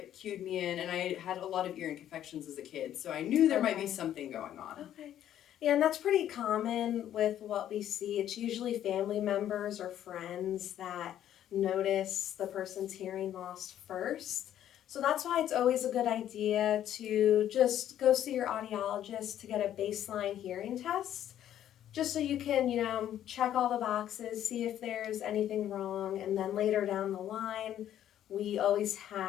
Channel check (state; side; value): quieter; right; 11.2 dB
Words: cued me in, and I had a lot of ear infections as a kid, so I knew there might be something going on. Okay. Yeah, and that's pretty common with what we see. It's usually family members or friends that notice the person's hearing loss first. So that's why it's always a good idea to just go see your audiologist to get a baseline hearing test, just so you can, check all the boxes, see if there's anything wrong, and then later down the line, we always